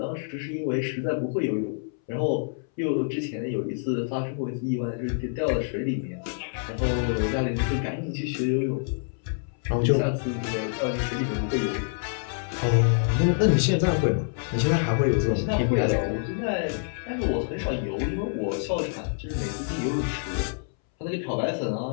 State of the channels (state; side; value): silent; right; 60 dB below the other